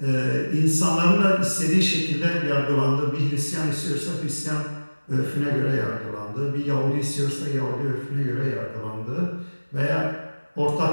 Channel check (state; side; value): inverted; both; correlation -1.00